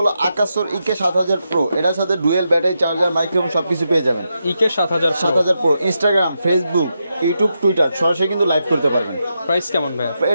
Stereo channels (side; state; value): both; inverted; correlation -0.85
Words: আকাশর EK7000 Pro, এটার সাথে ডুয়াল ব্যাটারি চার্জার মাইক্রোফোন সবকিছু পেয়ে যাবেন। EK7000 Pro Instagram, Facebook, YouTube, Twitter সরাসরি কিন্তু লাইভ করতে পারবেন। প্রাইস কেমন ভাই?